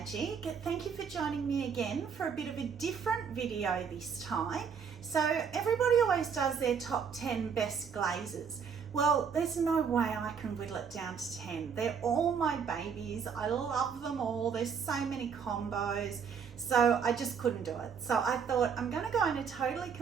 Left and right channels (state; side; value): quieter; left; 6.6 dB